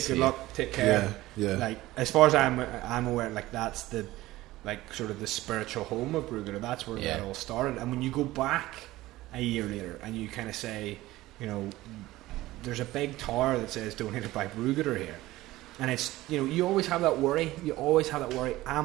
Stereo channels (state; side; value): quieter; left; 17.2 dB